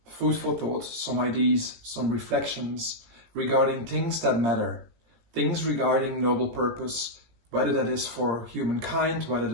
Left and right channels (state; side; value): late; left; 17 ms